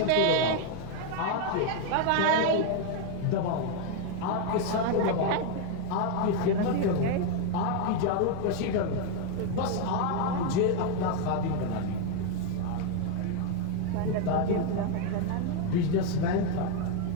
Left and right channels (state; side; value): different; both; correlation 0.01